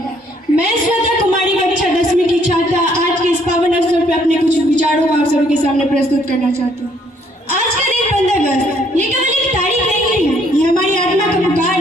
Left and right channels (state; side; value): normal; both; correlation 0.66